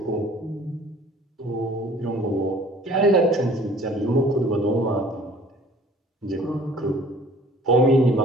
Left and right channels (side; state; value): both; normal; correlation 0.52